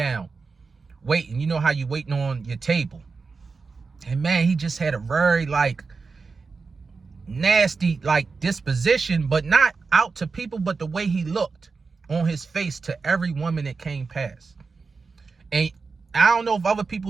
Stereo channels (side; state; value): left; quieter; 4.5 dB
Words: waiting. You know how you waiting on your table. And man, he just had a very nasty disposition, but not out to people, but the way he looked on his face to every woman that came past. And I don't know if other